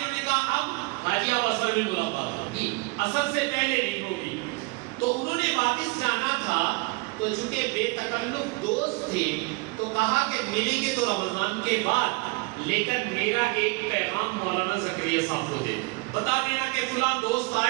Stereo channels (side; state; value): left; quieter; 27.4 dB